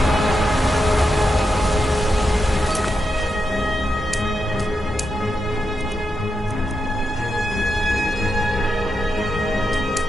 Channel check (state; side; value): normal; both; correlation 0.85